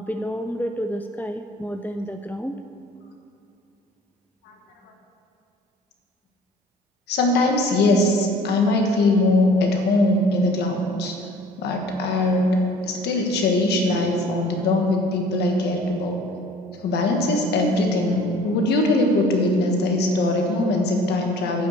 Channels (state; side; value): normal; both; correlation 0.50